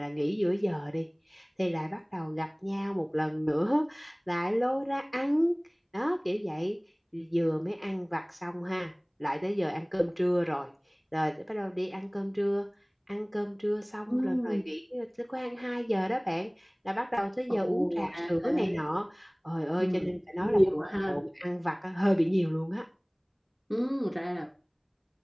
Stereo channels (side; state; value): both; identical; correlation 1.00